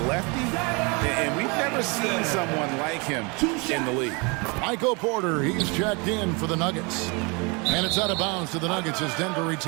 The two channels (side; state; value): left; quieter; 30.0 dB